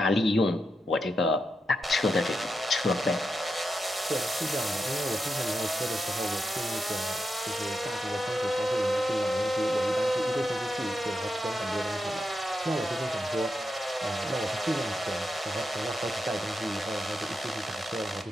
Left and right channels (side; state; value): both; normal; correlation 0.86